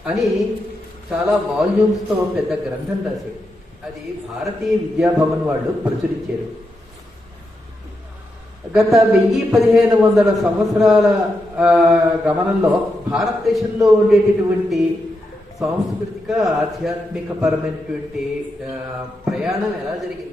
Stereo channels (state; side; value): normal; both; correlation 0.85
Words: అని చాలా వాల్యూమ్స్తో పెద్ద గ్రంథం రాశాడు. అది భారతీయ విద్యాభవన్ వాళ్ళు ప్రచురించారు. గత 1000-1500 సంవత్సరాల గమనంలో భారతదేశంలో ఉండేటటువంటి సాంస్కృతిక ఆధ్యాత్మిక పరమైనటువంటి ప్రయాణం ఎలా